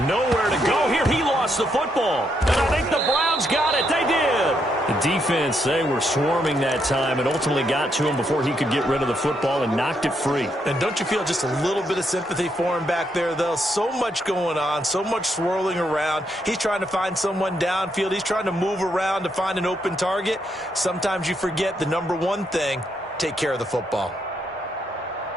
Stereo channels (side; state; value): both; normal; correlation 0.78